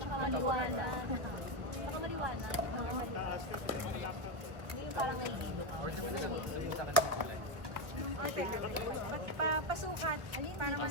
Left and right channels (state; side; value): late; left; 1.3 ms